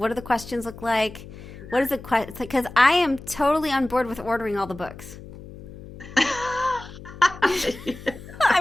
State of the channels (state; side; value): noise; left; hum, 15 dB below the sound